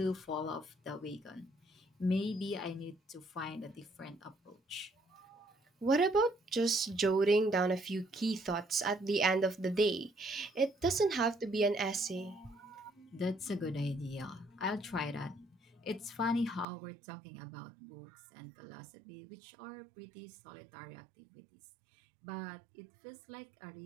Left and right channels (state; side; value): drops out; left; at 16.7 s